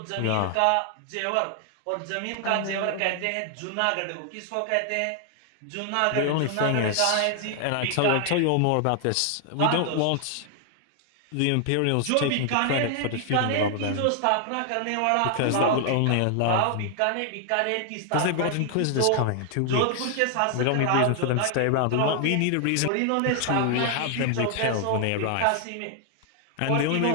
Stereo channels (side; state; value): both; different; correlation 0.00